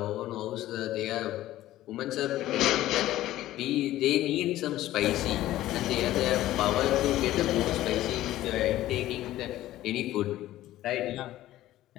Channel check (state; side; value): quieter; right; 14.7 dB